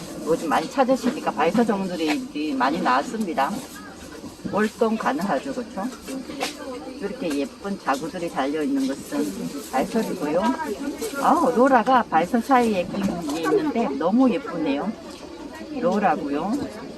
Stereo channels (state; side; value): identical; both; correlation 1.00